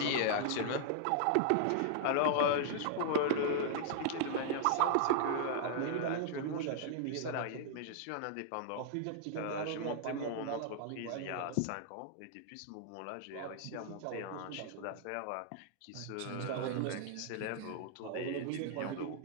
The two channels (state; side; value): different; both; correlation -0.01